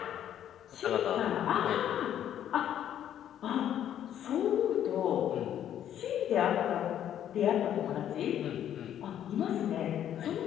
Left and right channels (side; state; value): right; quieter; 10.5 dB